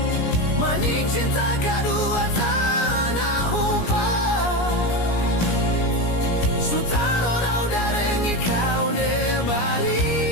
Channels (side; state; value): right; late; 17 ms